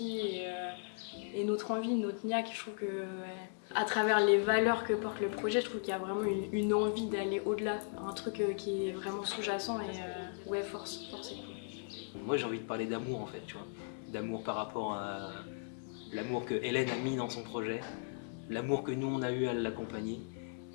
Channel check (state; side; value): silent; right; 53 dB below the other